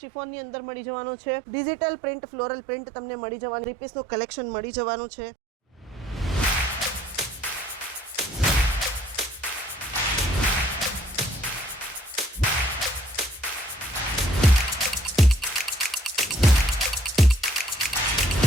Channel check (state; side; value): normal; both; correlation 0.62